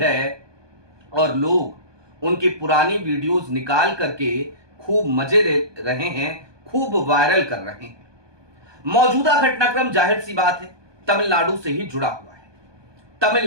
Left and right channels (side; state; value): left; late; 1.2 ms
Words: और लोग उनकी पुरानी वीडियोस निकाल करके खूब मजे ले रहे हैं, खूब वायरल कर रहे हैं। मौजूदा घटनाक्रम जाहिर सी बात है तमिलनाडु से ही जुड़ा हुआ है।